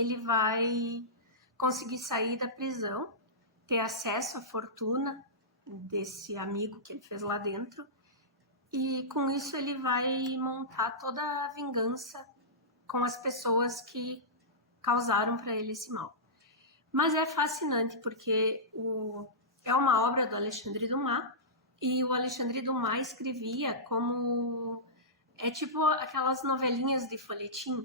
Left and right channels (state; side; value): normal; both; correlation -0.16